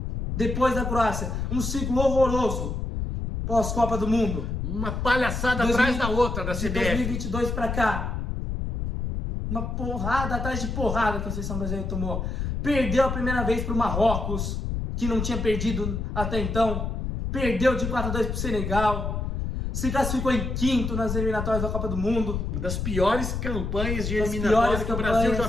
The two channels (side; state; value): left; noise; rumble, 3 dB below the sound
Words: Depois da Croácia, um ciclo horroroso pós-Copa do Mundo. Uma palhaçada atrás da outra da CBF. De 2022 para cá. Uma porrada atrás de porrada que a seleção brasileira tomou. Perdeu a primeira vez para o Marrocos, que não tinha perdido até então. Perdeu de 4-2 para o Senegal. Se classificou em quinto nas eliminatórias da Copa do Mundo. Uma das piores campanhas de eliminatórias que o Brasil já